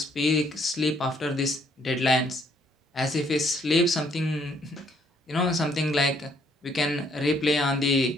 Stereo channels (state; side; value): normal; both; correlation 0.67